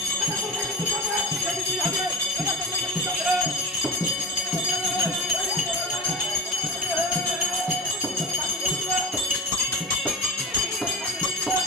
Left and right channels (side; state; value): both; normal; correlation 0.31